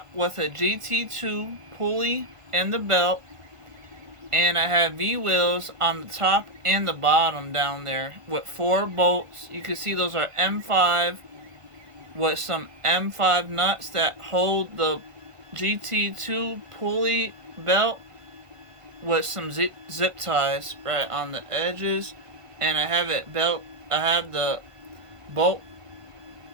with a GT2 pulley and the belt, and I have V-wheels on the top and the bottom down there with 4 bolts. You can see those are M5 with some M5 nuts that hold the GT2 pulley belt with some zip ties right on the edges, and I have the bolt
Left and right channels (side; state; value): left; late; 1.5 ms